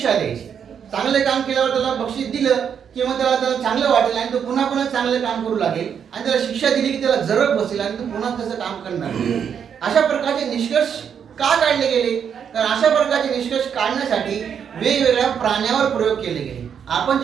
द्यायची. चांगलं काम केल्यावर त्याला बक्षीस दिलं किंवा त्याला चांगलं वाटेल आणि तो पुन्हा चांगलं काम करू लागेल, आणि त्याला शिक्षा दिली की त्याला जरब बसेल आणि तो पुन्हा तसं काम करणार. अशा प्रकारचे निष्कर्ष का काढले गेले? तर अशा प्रकारचे निष्कर्ष काढण्यासाठी वेगवेगळ्या प्राण्यावर प्रयोग केले गेले. आपण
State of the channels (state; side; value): quieter; left; 7.8 dB